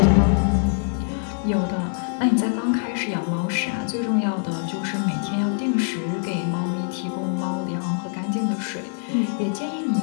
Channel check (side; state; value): right; silent; 63 dB below the other